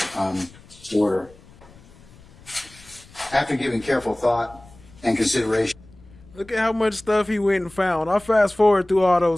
order. After giving careful thought and consideration. Look at how much stuff he went and found. I fast forward through all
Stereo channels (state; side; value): noise; left; rumble, 24 dB below the sound